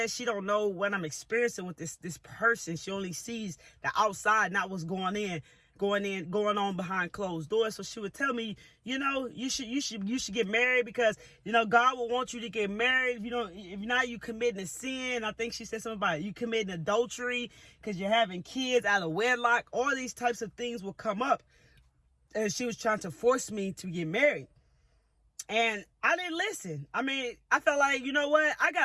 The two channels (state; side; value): identical; both; correlation 1.00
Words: she don't know what I'm experiencing with this person. She only sees the outside, not what's going on behind closed doors. So she would tell me, you should get married, because God will want you to get married. If not, you committing a sin. I think she said something about you committing adultery because you're having kids out of wedlock. All these types of things will come up, and she was trying to force me to get married, and I didn't listen. I mean, I felt like, what? I